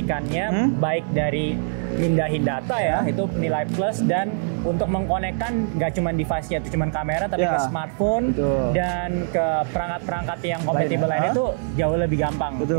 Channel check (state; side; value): silent; left; 63 dB below the other